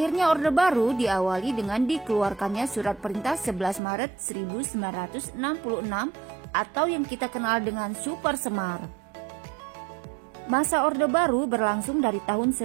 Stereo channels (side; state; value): left; drops out; at 3.8 s